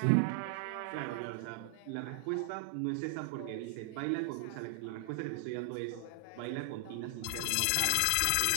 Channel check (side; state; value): both; different; correlation 0.00